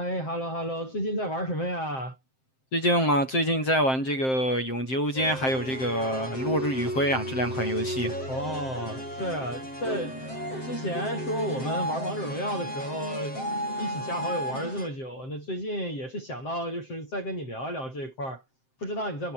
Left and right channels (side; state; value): right; late; 7.6 ms